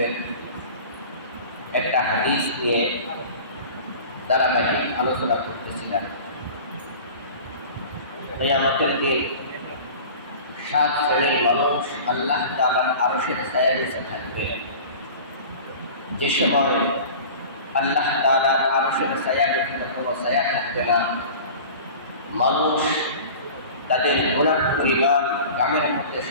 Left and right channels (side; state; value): both; inverted; correlation -0.39